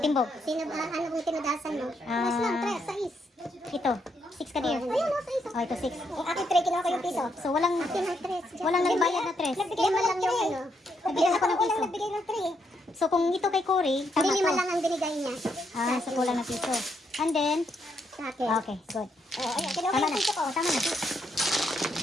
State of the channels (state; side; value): normal; both; correlation 0.77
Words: Sino ba? Ano kung tinudasan mo? Ah. Mas lang, tres, sais. Ito. 6 ka dear. Ayun, no, sais. Oh, ito 6. Yung akin, tre, kinuha ko yung piso. So, walang Akin ang tres. walang nagbayad na 3. Nagbigay mo lang yung ano. Nagbigay ako ng piso. Nagbigay ng tre. So, kung ito kay Cory, Hindi tama lima to. lang ang binigay niya. Ah, so kulang na piso. And then, Sa akin. okay, good. Oh, ayun, kinuha ko Tama yung na. piso ko. Tama na.